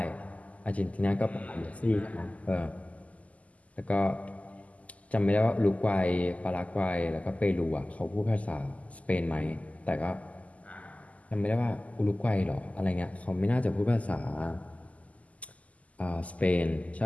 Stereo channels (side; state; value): right; late; 0.071 ms